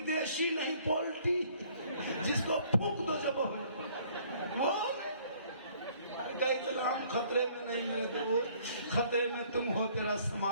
देशी नहीं, पोल्ट्री, जिसको फूंक दो जब वो इस्लाम खतरे में नहीं है, तो वो खतरे में तुम हो, तेरा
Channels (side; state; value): both; inverted; correlation -0.59